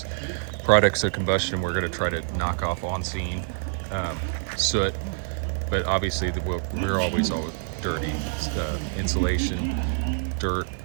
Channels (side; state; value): left; silent; 61 dB below the other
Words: products of combustion we're going to try to knock off on scene, soot, but obviously we're always dirty, insulation, dirt,